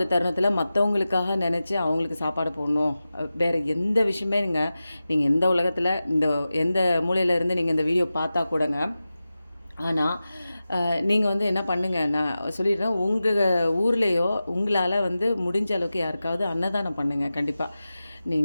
தருணத்தில் மற்றவங்களுக்காக நினச்சி அவங்களுக்கு சாப்பாடு போடணும். வேறு எந்த விஷயமே நீங்கள் எந்த உலகத்தில் எந்த மூலையிலேருந்து நீங்கள் இந்த வீடியோ பார்த்தா கூடங்க, ஆனால் நீங்கள் என்ன பண்ணுங்கள், நான் சொல்லிடுறேன், உங்கள் ஊர்லேயோ உங்களால் முடிஞ்ச அளவுக்கு யாருக்காவது அன்னதானம் பண்ணுங்கள். கண்டிப்பாக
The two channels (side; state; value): both; inverted; correlation -0.94